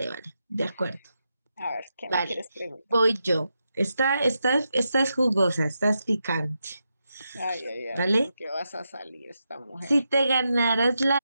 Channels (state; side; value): inverted; both; correlation -0.86